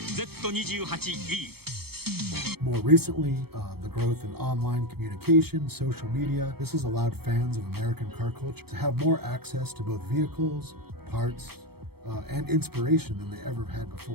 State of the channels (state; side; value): late; left; 0.96 ms